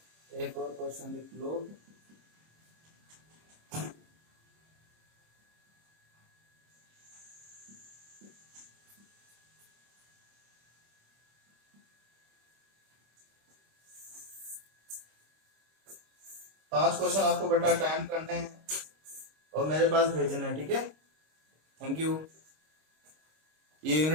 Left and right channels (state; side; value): late; left; 26 ms